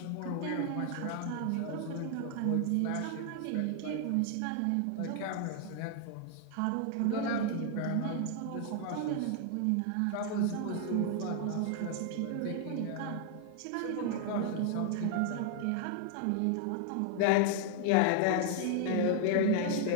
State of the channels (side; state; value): both; different; correlation 0.00